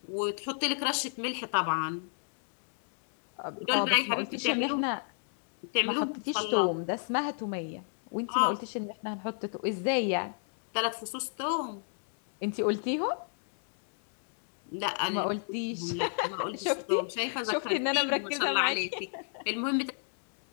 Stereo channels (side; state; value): right; silent; digital silence